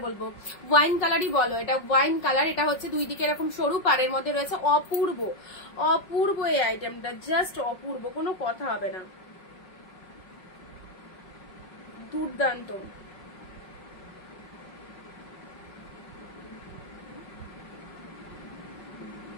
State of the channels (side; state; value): right; late; 5.5 ms